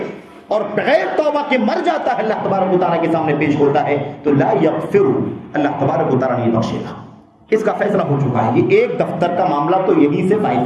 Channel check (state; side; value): identical; both; correlation 1.00